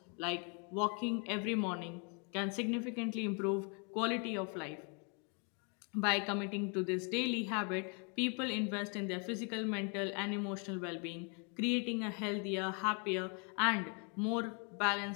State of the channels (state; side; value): quieter; right; 36.8 dB